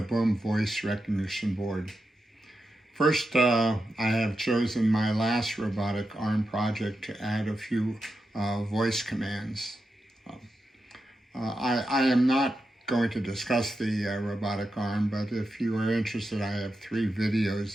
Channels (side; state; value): both; normal; correlation 0.88